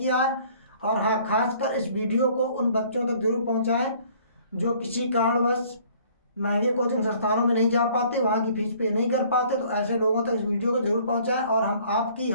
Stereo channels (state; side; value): inverted; both; correlation -0.56